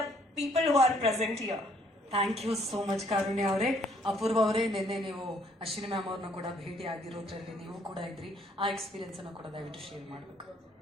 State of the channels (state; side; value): normal; both; correlation 0.64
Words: people who are present here. Thank you so much Karunya ಅವರೇ. ಅಪೂರ್ವ ಅವರೇ, ನಿನ್ನೆ ನೀವು ಅಶ್ವಿನಿ ಮ್ಯಾಮ್ ಅವ್ರನ್ನ ಕೂಡ ಭೇಟಿ ಆಗಿರೋದ್ರಲ್ಲಿ ನೀವು ಕೂಡ ಇದ್ರಿ. ಆ ಎಕ್ಸ್ಪೀರಿಯನ್ಸ್ ಅನ್ನು ಕೂಡ ದಯವಿಟ್ಟು ಶೇರ್ ಮಾಡಬೇಕು.